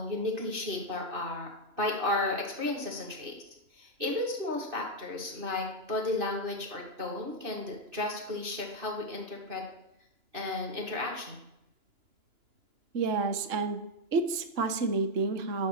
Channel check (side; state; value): left; late; 2.9 ms